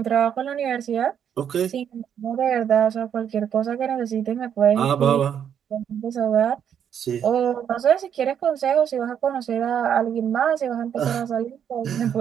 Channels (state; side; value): quieter; left; 8.7 dB